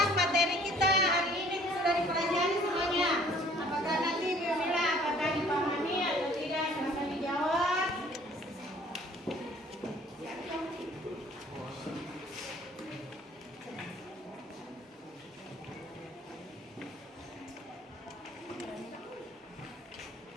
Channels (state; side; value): normal; both; correlation 0.55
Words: materi kita hari ini sudah dipelajari semuanya. Apakah nanti Bu Mila apakah dipahami atau tidak? Silakan dijawab.